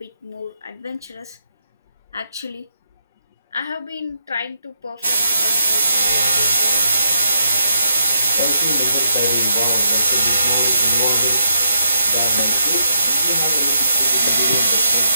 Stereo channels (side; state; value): both; inverted; correlation -0.73